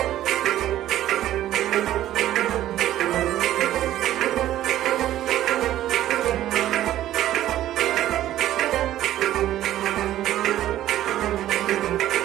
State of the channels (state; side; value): quieter; left; 13.2 dB